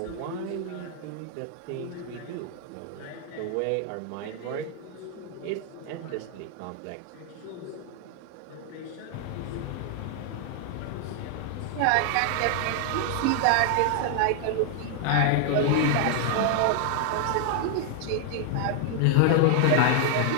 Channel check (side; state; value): both; different; correlation 0.00